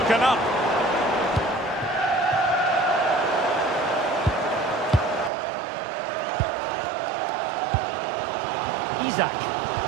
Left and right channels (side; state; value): left; drops out; at 5.3 s